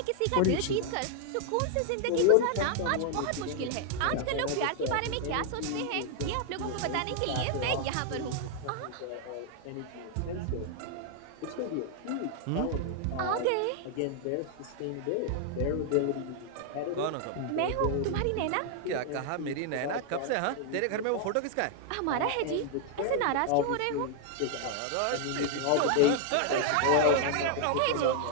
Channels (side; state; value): both; different; correlation 0.00